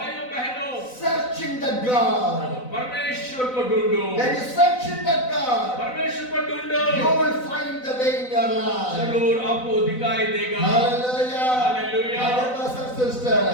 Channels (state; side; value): late; right; 4.0 ms